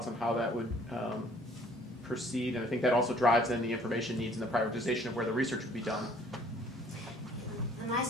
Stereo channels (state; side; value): normal; both; correlation 0.57